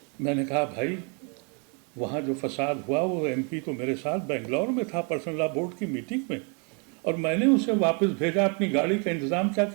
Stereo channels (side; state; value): left; quieter; 36.2 dB